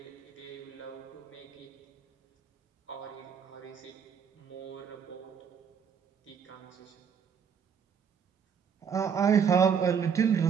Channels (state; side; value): quieter; left; 7.0 dB